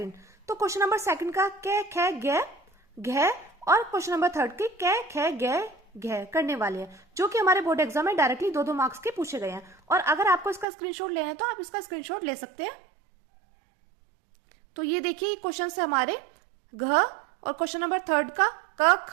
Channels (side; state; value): left; drops out; at 10.7 s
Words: तो क्वेश्चन नंबर 2 का कै खे गे घे और क्वेश्चन नंबर 3 के कै खे गे घे करने वाले हैं, जो कि हमारे बोर्ड एग्जाम में डायरेक्टली 2-2 मार्क्स के पूछे गए हैं। और अगर आपको इसका स्क्रीनशॉट लेना है तो आप इसका स्क्रीनशॉट ले सकते हैं। तो ये देखिए क्वेश्चन है हमारे घ, और क्वेश्चन नंबर 3 का क